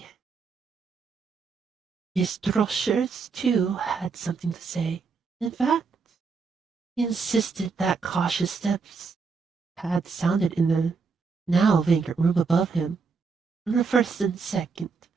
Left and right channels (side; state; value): left; quieter; 5.0 dB